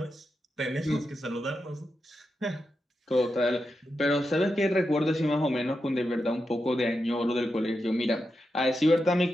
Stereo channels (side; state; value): both; normal; correlation 0.88